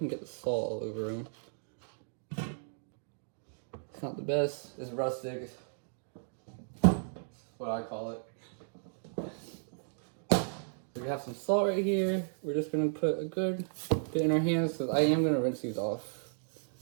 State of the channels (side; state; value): left; silent; digital silence